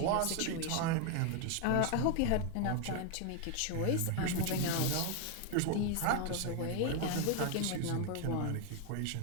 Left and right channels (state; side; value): different; both; correlation 0.01